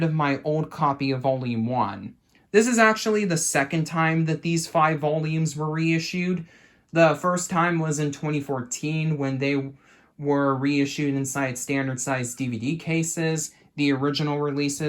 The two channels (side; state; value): both; identical; correlation 1.00